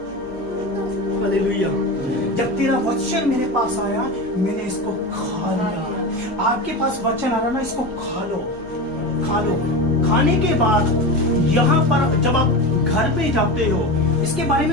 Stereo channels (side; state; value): left; noise; hum, 24 dB below the sound